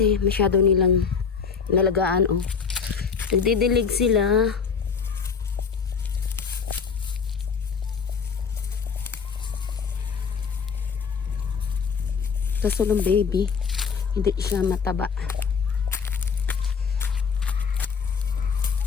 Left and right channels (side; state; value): right; quieter; 5.9 dB